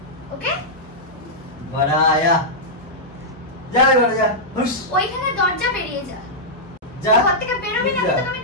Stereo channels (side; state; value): both; normal; correlation -0.09